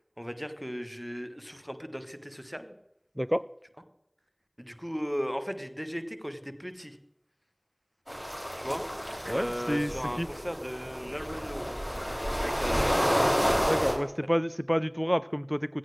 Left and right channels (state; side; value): identical; both; correlation 1.00